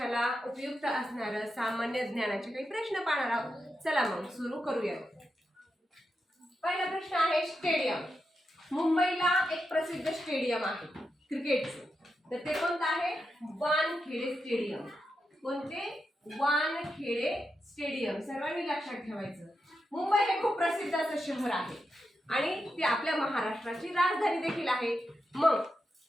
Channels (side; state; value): both; normal; correlation 0.87